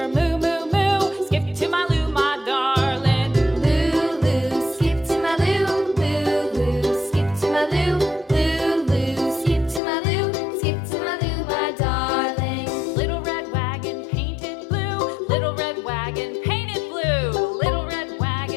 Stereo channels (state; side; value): drops out; right; at 9.8 s